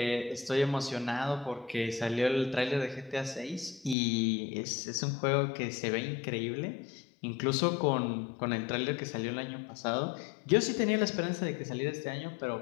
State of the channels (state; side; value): drops out; right; at 4.0 s